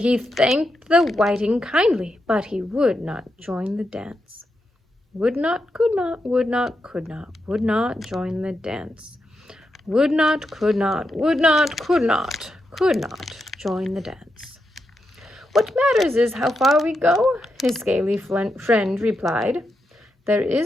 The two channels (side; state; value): both; normal; correlation 0.85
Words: thanked the whiting kindly, but he would not join the dance. Would not, could not, would not, could not, would not join the dance. Would not, could not, would not, could not join the dance. What matters is how far we go, his scaly friend replied. There